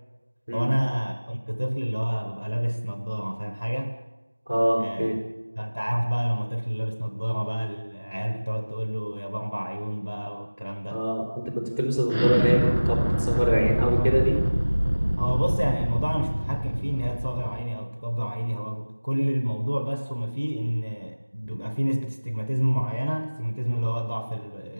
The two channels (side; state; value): both; inverted; correlation -1.00